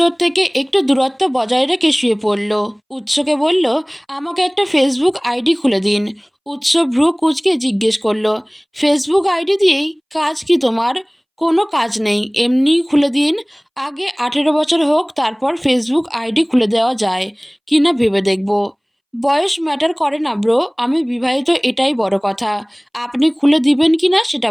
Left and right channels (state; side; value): identical; both; correlation 1.00